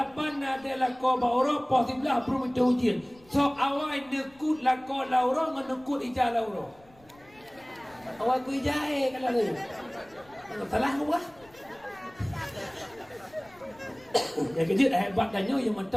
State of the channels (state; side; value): noise; left; rumble, 28 dB below the sound